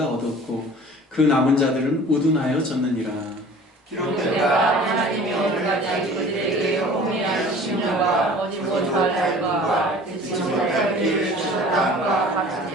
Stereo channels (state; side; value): normal; both; correlation 0.45